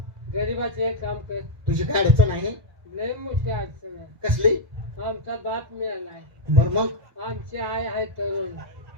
गरीबाचे काम कर तुझी काय अडचण आहे लय मोठी अडचण आहे कसली आमचा बाप मिळालाय बर मग आमची आई आहे तरुण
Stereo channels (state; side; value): late; left; 2.0 ms